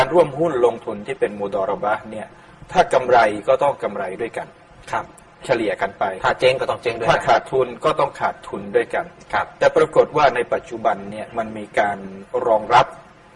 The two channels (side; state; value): both; identical; correlation 1.00